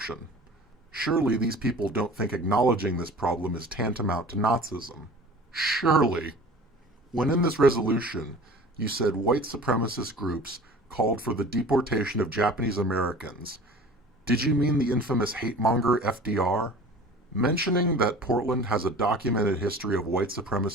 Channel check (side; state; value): both; normal; correlation 0.42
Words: Surely these people don't think acknowledging this problem is tantamount to Nazism. Surely. When in this resolution you said white supremacist groups called for the deportation of Japanese Americans, did you mean the infamous hate-monger FDR? Mentioning that Portland has a documented history of white